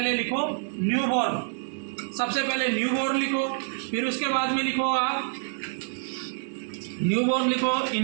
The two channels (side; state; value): left; silent; digital silence